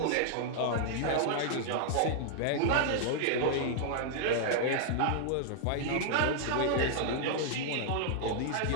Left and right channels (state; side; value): different; both; correlation 0.00